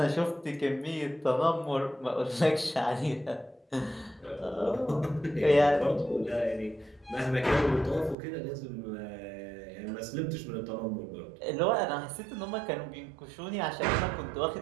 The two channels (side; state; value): left; drops out; at 8.2 s